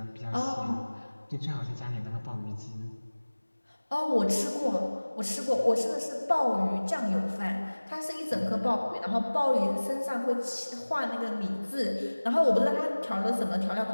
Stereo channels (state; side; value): inverted; both; correlation -1.00